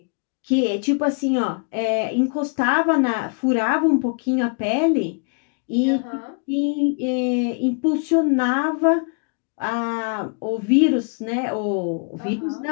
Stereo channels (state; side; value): quieter; right; 38.2 dB